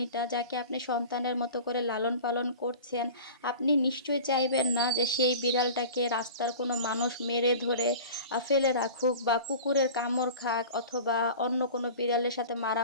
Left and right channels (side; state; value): both; inverted; correlation -0.37